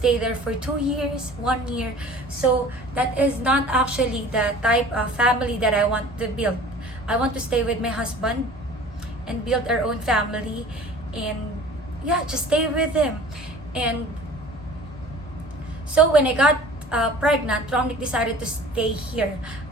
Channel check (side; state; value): both; normal; correlation 0.45